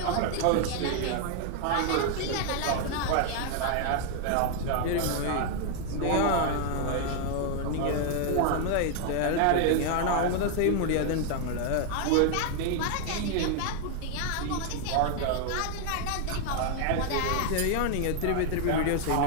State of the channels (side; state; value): both; different; correlation 0.00